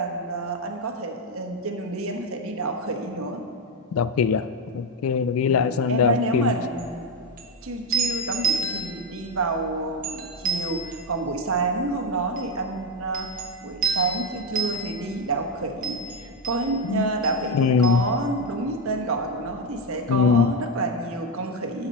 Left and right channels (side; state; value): both; normal; correlation 0.08